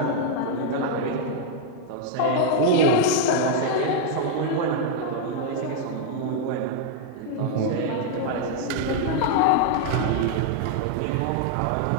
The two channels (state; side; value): different; both; correlation 0.00